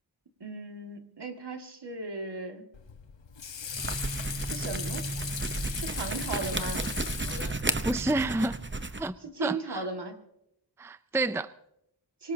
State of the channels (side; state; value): both; normal; correlation 0.43